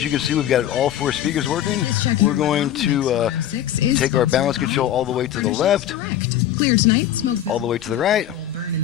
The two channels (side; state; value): right; quieter; 11.3 dB